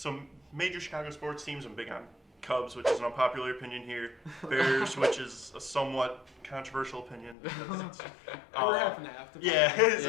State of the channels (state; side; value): drops out; right; at 7.4 s